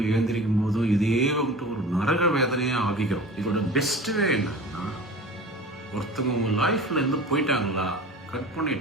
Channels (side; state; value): both; normal; correlation 0.37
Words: எழுந்திரிக்கும் போதும் இதே வந்துட்டு ஒரு நரக வேதனையாக ஆகிக்கிறோம். இதோட பெஸ்ட் வே என்னன்னா, ஒருத்தவங்க உங்கள் லைஃப்ல இருந்து போயிட்டாங்களா, கட்